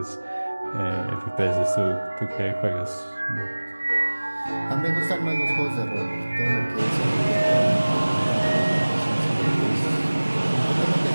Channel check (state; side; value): inverted; both; correlation -1.00